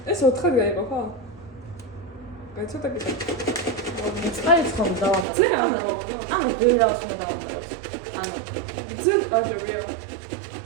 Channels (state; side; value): drops out; left; at 5.2 s